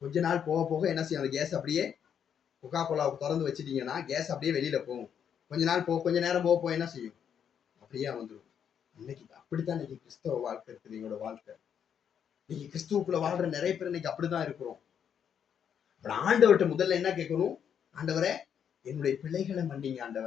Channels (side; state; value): right; quieter; 8.2 dB